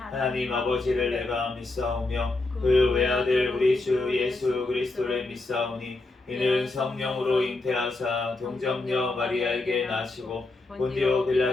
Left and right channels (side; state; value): right; quieter; 3.1 dB